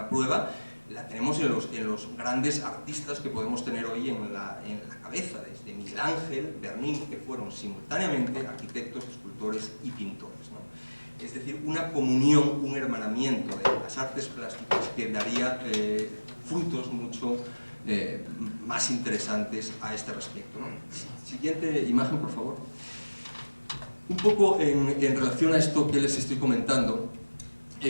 prueba la tenemos en los grandes artistas que podemos tener hoy en la cabeza, desde Miguel Ángel, Bernini, que fueron simultáneamente arquitectos, escultores y pintores, ¿no? Es decir, una comunión, un hermanamiento de las artes plásticas que daría frutos mucho más interesantes a este respecto, ¿no? Siguiente imagen, por favor. Un poco en relación a esto que les estoy comentando,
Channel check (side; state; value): both; inverted; correlation -1.00